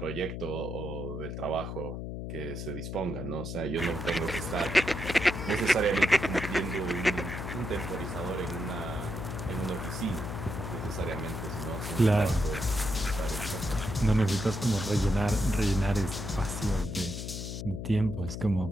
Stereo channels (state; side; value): noise; left; hum, 6 dB below the sound